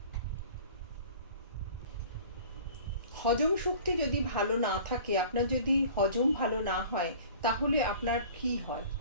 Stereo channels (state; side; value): inverted; both; correlation -0.45